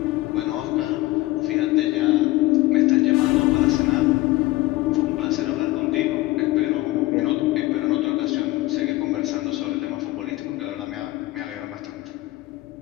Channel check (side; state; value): right; quieter; 18.6 dB